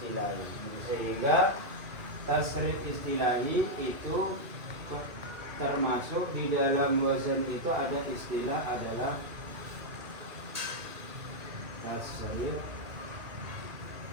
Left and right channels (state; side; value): late; left; 2.6 ms